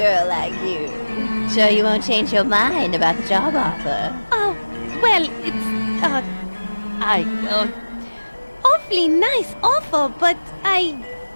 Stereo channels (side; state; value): both; inverted; correlation -1.00